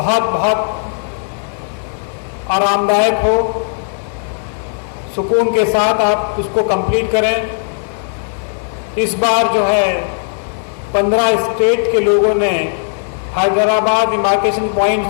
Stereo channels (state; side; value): silent; right; digital silence